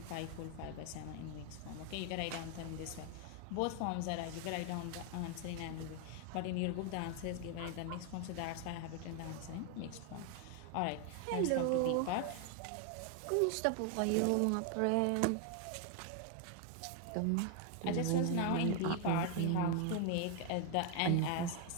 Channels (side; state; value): both; different; correlation 0.01